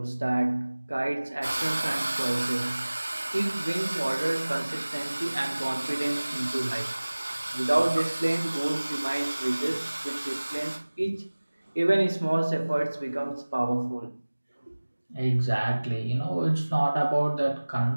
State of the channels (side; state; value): both; inverted; correlation -1.00